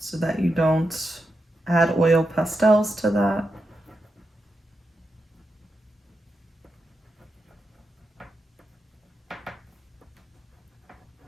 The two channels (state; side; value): normal; both; correlation 0.87